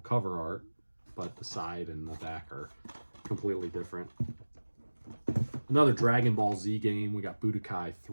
art, but the side and the back are completely different. Another Dragon Ball Z game. We got Budokai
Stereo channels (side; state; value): both; inverted; correlation -1.00